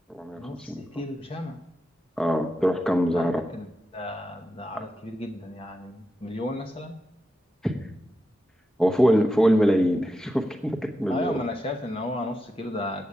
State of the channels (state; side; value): normal; both; correlation 0.88